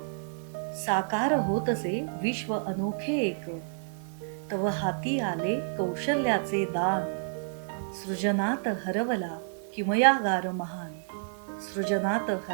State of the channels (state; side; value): silent; left; digital silence